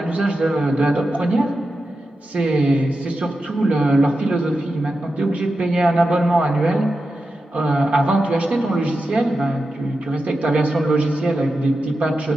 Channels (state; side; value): normal; both; correlation 0.90